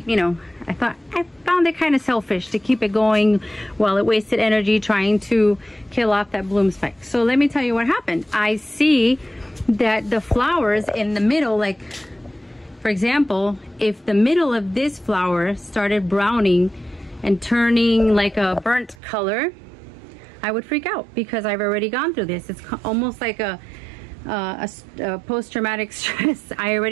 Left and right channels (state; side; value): drops out; left; at 18.9 s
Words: you know, I found it kind of selfish to keep it going while it wasted energy trying to kill off that bloom spike. So let me tell you what happened. I see that the flowers in the middle, like for example, if the middle of this flower started browning and turning like a burnt color, I would freak out because I've already gone through this. It's almost like a post-traumatic stress. I